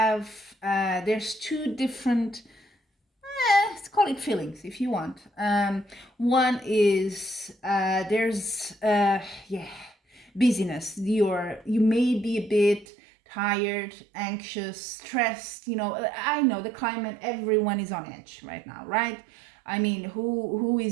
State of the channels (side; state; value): left; drops out; at 12.9 s